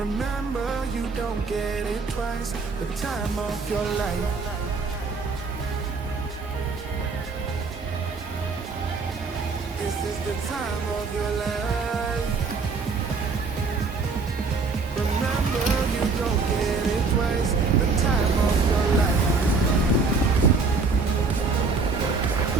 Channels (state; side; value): quieter; left; 4.4 dB